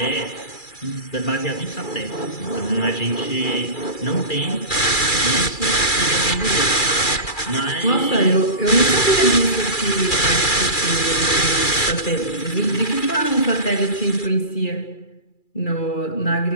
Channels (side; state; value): right; late; 2.3 ms